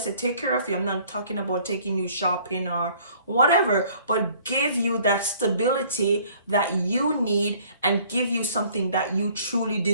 take care of you, I'm not talking about taking you shopping or whatever, but give you that stability that you need and give you something that you truly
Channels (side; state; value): both; inverted; correlation -0.56